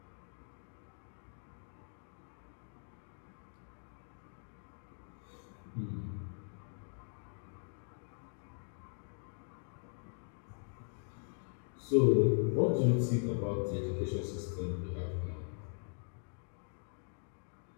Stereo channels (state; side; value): silent; right; 51 dB below the other